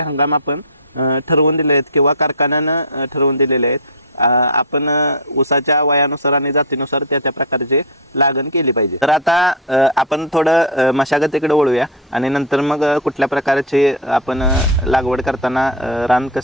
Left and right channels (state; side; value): normal; both; correlation 0.05